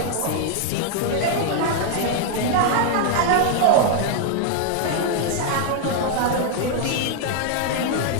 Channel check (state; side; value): different; both; correlation 0.00